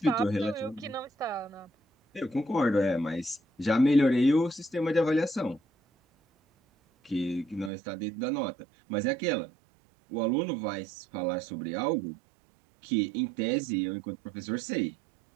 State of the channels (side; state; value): left; drops out; at 7.7 s